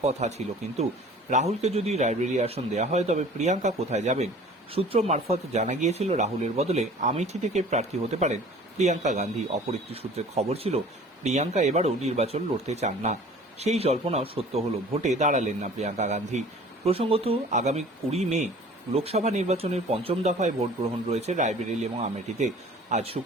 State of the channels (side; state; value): both; normal; correlation 0.47